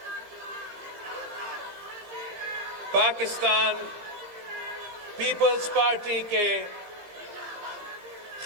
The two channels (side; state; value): left; late; 17 ms